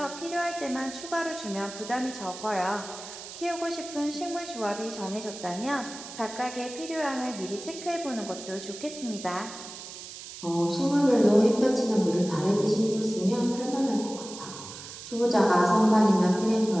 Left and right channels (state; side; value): noise; right; hiss, 13 dB below the sound